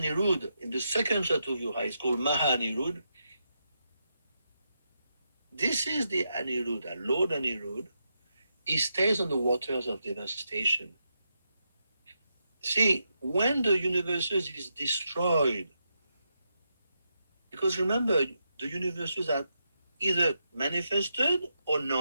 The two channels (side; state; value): both; inverted; correlation -0.84